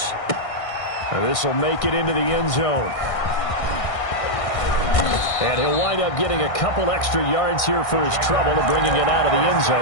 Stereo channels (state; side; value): late; right; 1.6 ms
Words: This will make it into the end zone. And he'll wind up getting a couple extra yards here for his trouble to bringing it out of the end